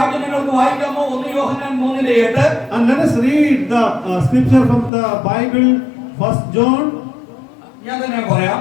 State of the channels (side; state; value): right; drops out; at 4.9 s